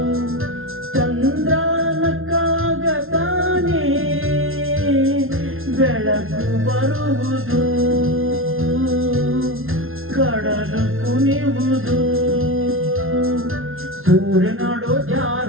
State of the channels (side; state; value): left; late; 0.61 ms